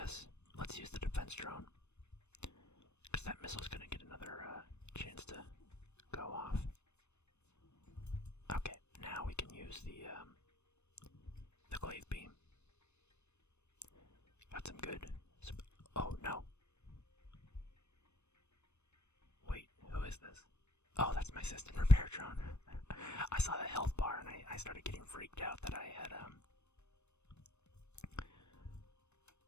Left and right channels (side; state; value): right; late; 0.81 ms